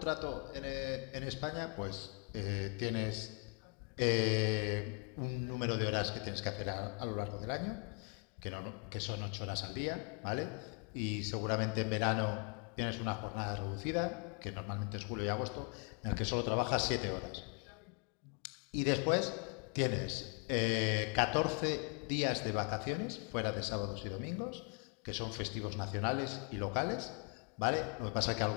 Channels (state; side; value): quieter; right; 36.3 dB